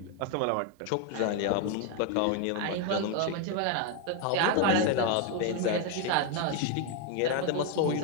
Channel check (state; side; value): different; both; correlation 0.01